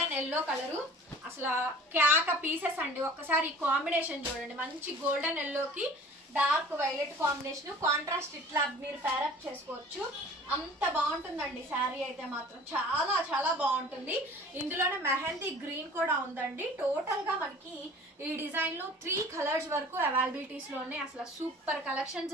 ఎల్లో కలరు. అసలు క్యాక పీసెస్ అండి. ఒక్కసారి ఈ కాంబినేషన్ చూడండి, మంచి గోల్డెన్ ఎల్లోకి డార్క్ వైలెట్ కాంబినేషన్. కాంట్రాస్ట్ ఇట్లా మీరు పేరప్ చేసుకోవచ్చు. అంత బాగుంటుందండి శారీ అయితే మాత్రం, చాలా బాగుంటుంది. ఇందులోనే మెహందీ గ్రీన్ కూడా ఉందండి. టోటల్ గా మనకి ఈ డిజైన్ లో 3 కలర్స్ వరకు అవైలబిలిటీస్ లో ఉన్నాయి. అసలు సూపర్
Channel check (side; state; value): both; normal; correlation 0.46